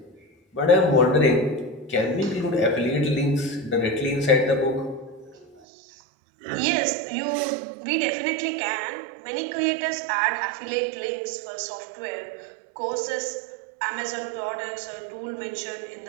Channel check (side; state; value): left; drops out; at 5.6 s